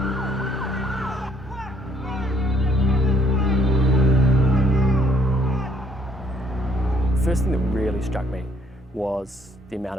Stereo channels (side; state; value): both; normal; correlation 0.66